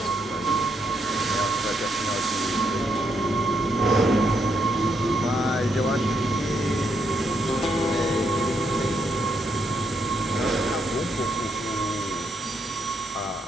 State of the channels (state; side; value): normal; both; correlation 0.78